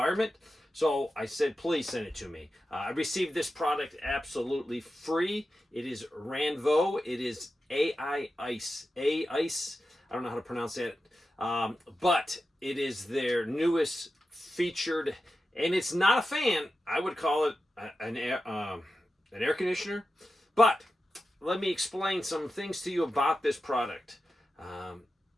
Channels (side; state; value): both; normal; correlation 0.92